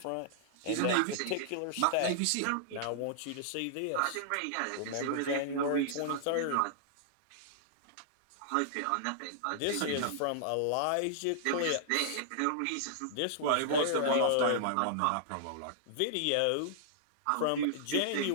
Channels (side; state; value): both; different; correlation -0.01